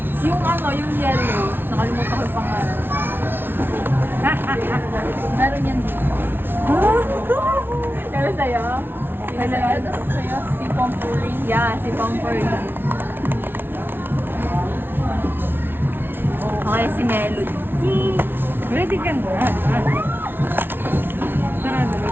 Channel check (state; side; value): late; left; 0.10 ms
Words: Yung ano, yung yellow. Nakalimutan ko yung pangalan. Meron yan dito. Kaya sa'yo? Ano sa'yo? Si Pomporin. Yeah, si Pomporin. Okay, si Melody. Ready ka na. Tara na, may